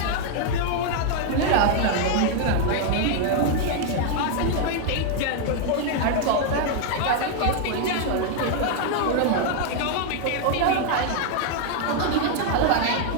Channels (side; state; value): both; different; correlation 0.00